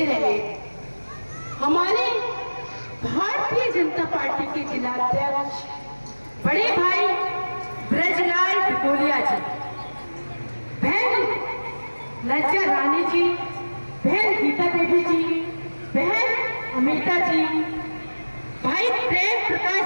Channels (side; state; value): both; inverted; correlation -1.00